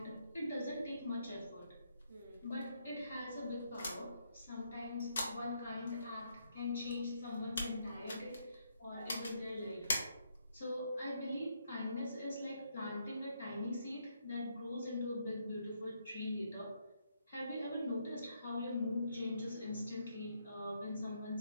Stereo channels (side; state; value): both; inverted; correlation -0.76